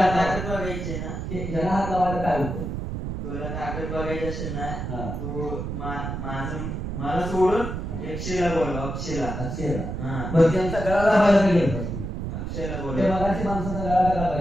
होतं? ताकद बघायची ना, ह्याला हात लावायला काय होतं? तुला ताकद बघायची असेल ना, हा. तू माझं मला सोडून एकशेला बोल. अक्षयला. अक्षयला. हा. बरं, त्यांचा गळा दाबायला काय घेतलास तू? अक्षयला बोल. त्या मगाची माणसाचा गळा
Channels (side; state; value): right; noise; rumble, 5 dB below the sound